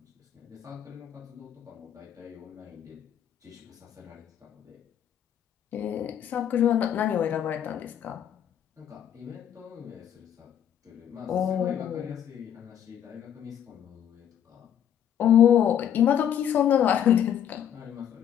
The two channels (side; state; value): right; quieter; 9.6 dB